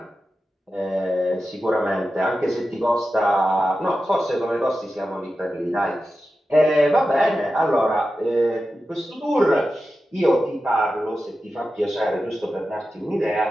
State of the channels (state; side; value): normal; both; correlation 0.92